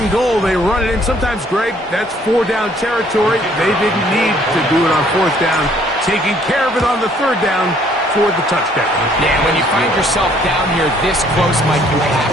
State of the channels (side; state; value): both; normal; correlation 0.62